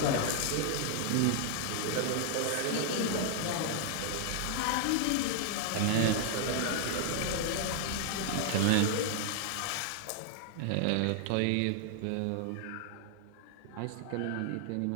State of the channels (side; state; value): both; different; correlation -0.01